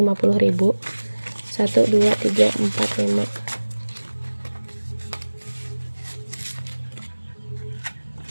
1, 2, 3, 4, 5.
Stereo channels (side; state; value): both; inverted; correlation -1.00